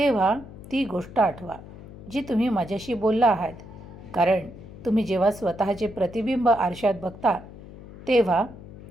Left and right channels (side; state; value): left; noise; hum, 16 dB below the sound